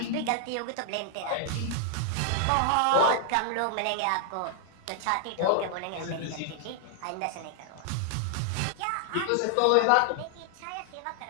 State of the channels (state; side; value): different; both; correlation 0.00